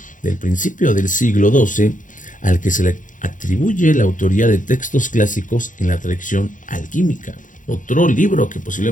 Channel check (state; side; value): late; right; 0.38 ms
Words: del principio del siglo XII al que se le atribuye la autoría de textos clásicos en la tradición alquímica. Otro libro que